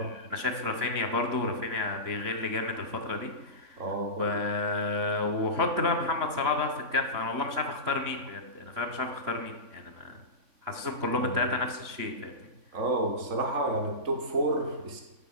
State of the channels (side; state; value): left; late; 3.6 ms